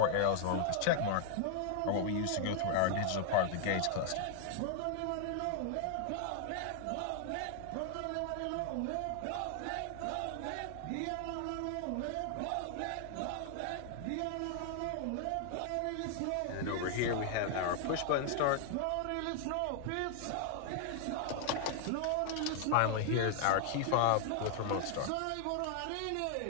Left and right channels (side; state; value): both; different; correlation 0.00